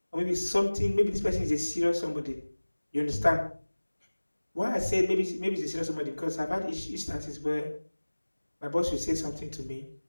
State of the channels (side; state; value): both; inverted; correlation -1.00